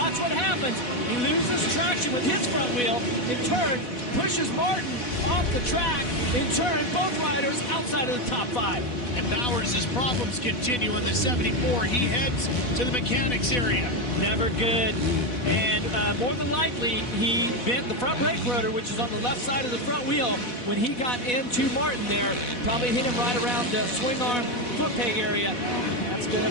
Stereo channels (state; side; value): late; right; 4.1 ms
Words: what happens. He loses traction with his front wheel. In turn, pushes Martin off the track. In turn, both riders outside of the top 5. And Bowers' problems continue on the 74. He heads to the mechanics area. Never good. And more than likely, he bent the front brake rotor, which is on the left side of the front wheel, when he got into Martin there. Probably hit him right around the swing arm foot peg area. That's going